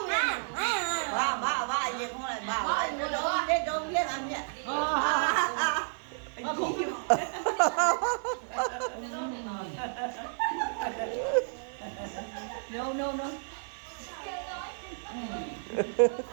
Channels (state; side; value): silent; left; digital silence